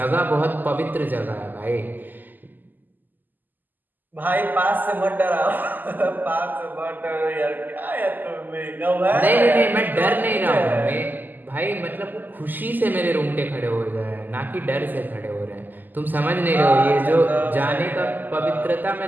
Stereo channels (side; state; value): left; late; 0.087 ms